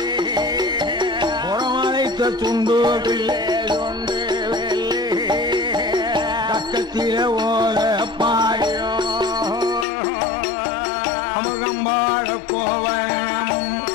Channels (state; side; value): drops out; right; at 9.9 s